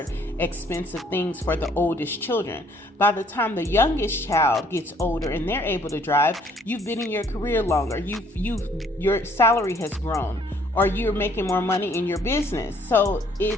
expensive things for the oldest children. By the time the youngest child gets older and they're able to drive, you've been in your career longer. Your salary has grown, or you're making more money in your business. So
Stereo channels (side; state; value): both; normal; correlation 0.62